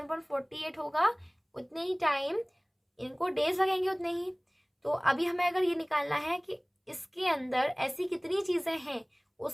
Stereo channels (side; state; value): both; identical; correlation 1.00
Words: होगा उतने ही टाइम इनको डेज लगेंगे उतने ही। तो अभी हमें अगर ये निकालना है कि इसके अंदर ऐसी कितनी चीजें हैं,